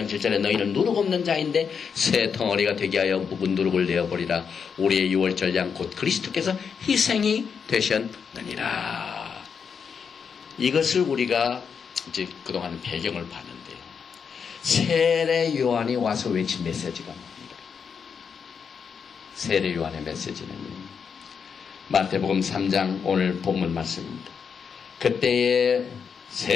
7절에 너희는 누룩 없는 자인데 새 덩어리가 되게 하여 묵은 누룩을 내어버리라. 우리의 유월절 양 곧 그리스도께서 희생이 되셨느니라. 이것을 우리가 이제 그동안 배경을 봤는데요. 세례 요한이 와서 외친 메시지가 뭡니까? 세례 요한의 메시지는요. 마태복음 3장 오늘 본문 말씀입니다. 그때에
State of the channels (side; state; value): right; quieter; 6.5 dB